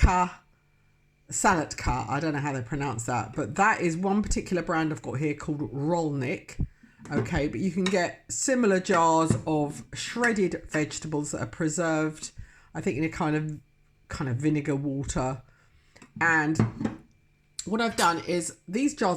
Salatka, I don't know how they pronounce that, but that is one particular brand I've got here called Rolnik. Okay, but you can get similar jars of shredded vegetables that are preserved, I think in a kind of vinegar water. And what I've done is, these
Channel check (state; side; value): identical; both; correlation 1.00